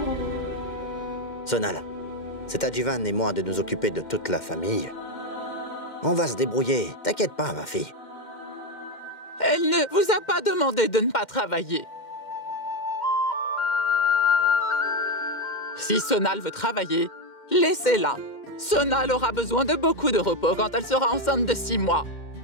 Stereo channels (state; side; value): late; right; 2.1 ms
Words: Sonal, c'est à Jivan et moi de nous occuper de toute la famille. On va se débrouiller. T'inquiète pas, ma fille. Elle ne vous a pas demandé de ne pas travailler. Si Sonal veut travailler, laissez-la. Sonal aura besoin de beaucoup de repos quand elle sera enceinte de 6 mois.